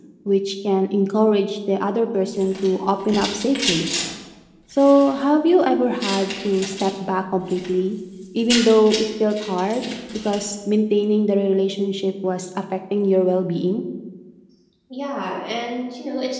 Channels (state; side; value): identical; both; correlation 1.00